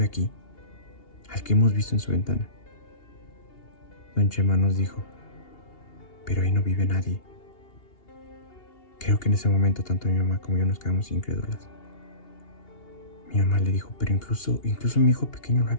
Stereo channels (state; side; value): late; right; 2.8 ms